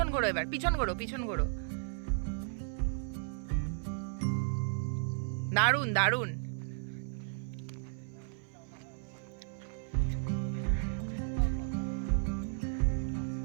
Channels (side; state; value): left; silent; 55 dB below the other